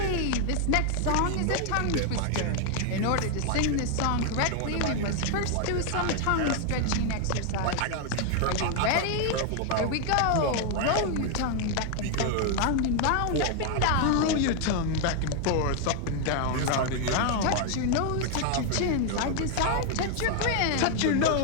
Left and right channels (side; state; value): both; different; correlation 0.00